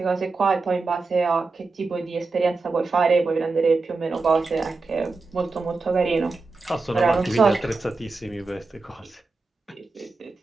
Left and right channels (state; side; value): quieter; left; 3.9 dB